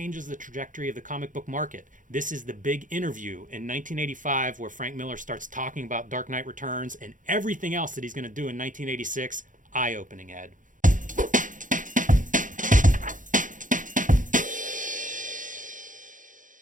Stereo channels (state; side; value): late; left; 0.38 ms